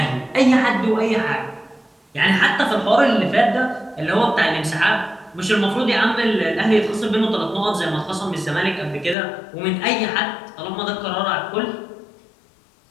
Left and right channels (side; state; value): right; drops out; at 9.2 s